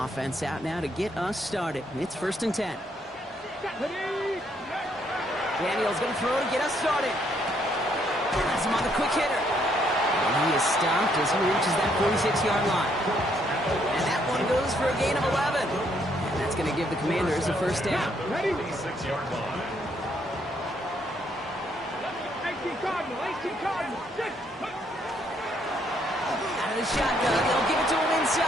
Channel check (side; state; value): both; normal; correlation 0.71